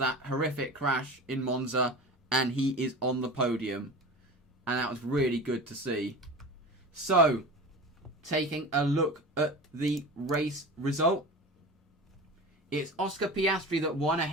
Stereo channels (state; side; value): normal; both; correlation 0.32